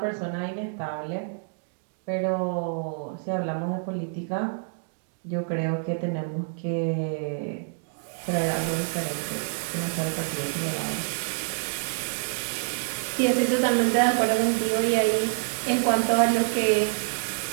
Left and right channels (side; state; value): left; silent; digital silence